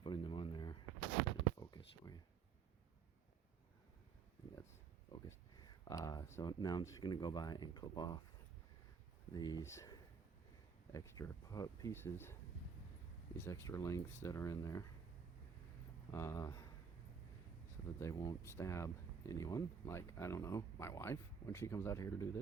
them on there. Focus for you. I think that's focused. So now I'm just going to go by and clip off these extra pieces, these extra lengths that are in there, so that they won't stab anyone, like, I don't know, my wife when she comes out here to do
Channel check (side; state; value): left; quieter; 6.4 dB